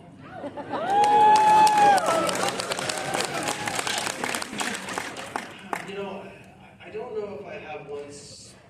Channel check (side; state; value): both; identical; correlation 1.00